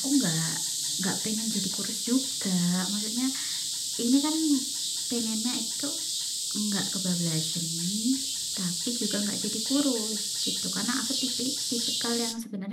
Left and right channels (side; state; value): both; identical; correlation 1.00